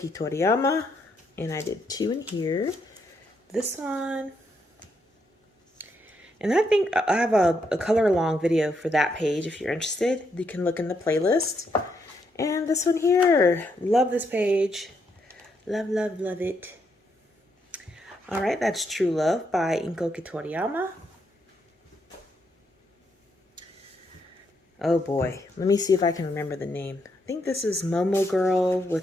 Toriyama, and I did 2 in here. This one. And I think I have a color along video for that page. If you're interested, you can look in the playlist. And this one here, love this page. Love, love, love it. All right, that's True Love by Inkoki Toriyama. Oh boy, let me see if I can remember the name. I think this is Momo Girl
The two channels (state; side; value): normal; both; correlation 0.77